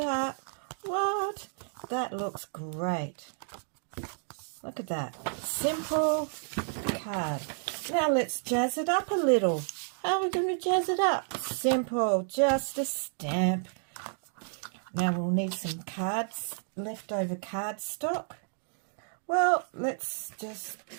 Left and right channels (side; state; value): left; silent; digital silence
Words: What? That looks great. Look at that. Simple card. Now let's jazz it up a little. How are we going to jazz it up? Simple. Just a stamp. Now we'll need some cards, leftover card stock. Well, let's just